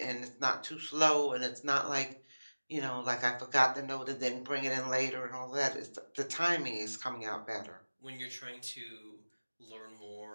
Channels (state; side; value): inverted; both; correlation -1.00